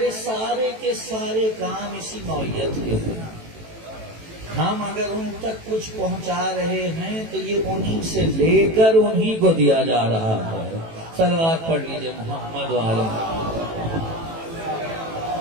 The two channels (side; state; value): left; late; 18 ms